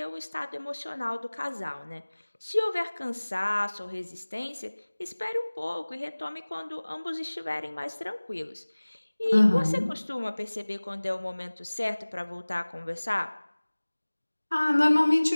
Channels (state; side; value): inverted; both; correlation -1.00